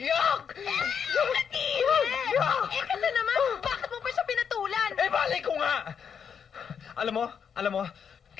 Yuck! Eh kasi naman, bakit mo pa siya pinatulan? Eh, balik ko nga! Alam mo,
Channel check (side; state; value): right; quieter; 7.2 dB